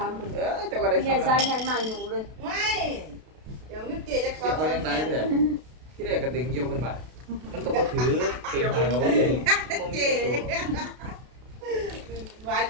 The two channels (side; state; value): left; late; 32 ms